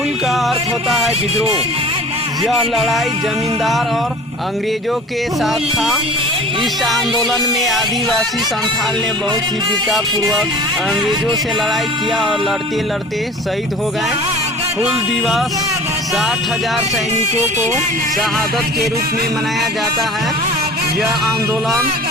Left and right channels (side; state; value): both; normal; correlation 0.42